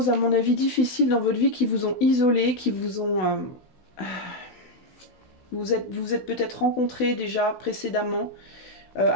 à mon avis, difficiles dans votre vie qui vous ont isolé, qui vous ont... Vous êtes peut-être rencontrés déjà précédemment,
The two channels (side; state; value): right; late; 16 ms